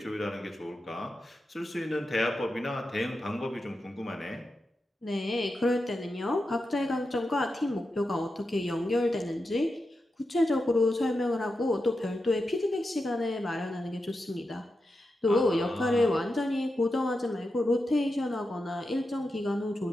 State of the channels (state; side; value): normal; both; correlation 0.89